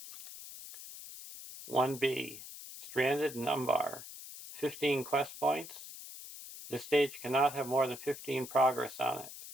1B, Stranded in Umbar, 15 quest points. This stage cannot have more than 15 progress on it.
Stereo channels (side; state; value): left; noise; hiss, 13 dB below the sound